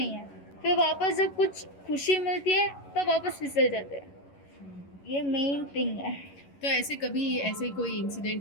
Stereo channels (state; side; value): late; right; 11 ms